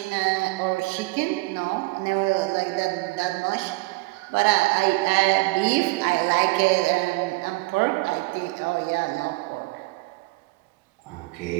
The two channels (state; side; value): quieter; left; 23.1 dB